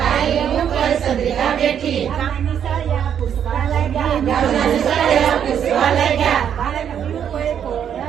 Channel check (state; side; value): quieter; left; 8.8 dB